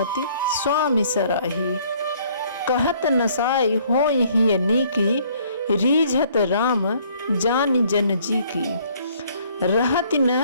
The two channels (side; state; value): both; inverted; correlation -0.61